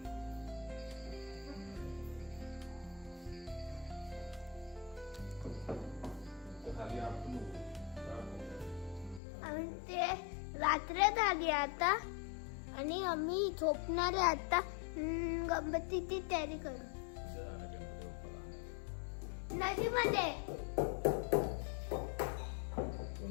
खाली आपण आम्ही ते रात्र झाली आता आणि आम्ही झोपणार आहे आता. गणपतीची तयारी करू नदीमध्ये.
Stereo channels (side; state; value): right; drops out; at 9.2 s